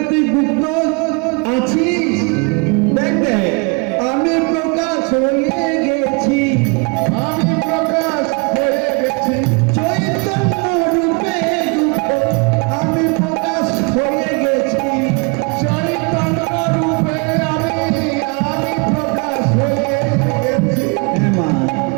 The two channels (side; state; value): left; quieter; 32.1 dB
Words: তুই গুপ্ত আছিস। দেখ দেখ, আমি প্রকাশ হয়ে গেছি, আমি প্রকাশ হয়ে গেছি। চৈতন্য রূপে গুপ্ত আমি প্রকাশ হয়ে গেছি। চৈতন্য রূপে আমি